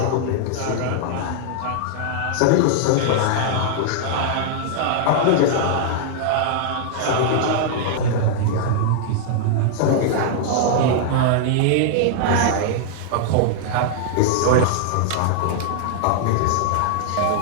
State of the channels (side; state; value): both; different; correlation -0.01